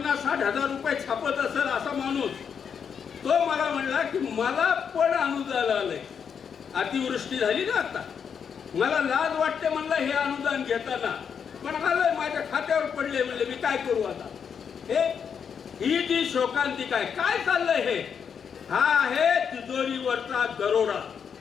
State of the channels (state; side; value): quieter; right; 7.1 dB